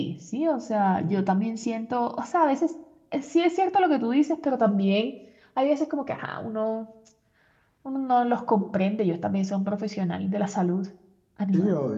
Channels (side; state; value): both; identical; correlation 1.00